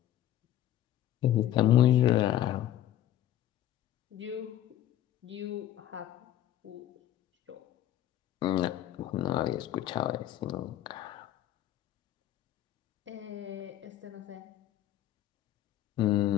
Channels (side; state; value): right; quieter; 12.2 dB